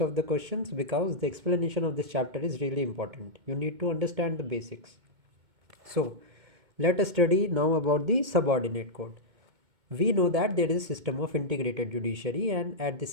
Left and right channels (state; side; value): late; left; 2.2 ms